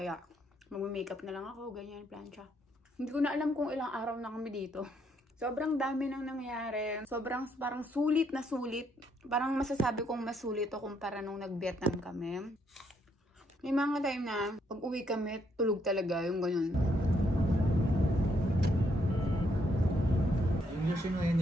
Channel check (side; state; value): both; normal; correlation 0.73